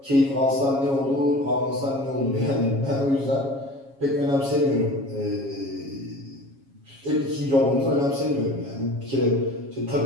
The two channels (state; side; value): late; left; 7.3 ms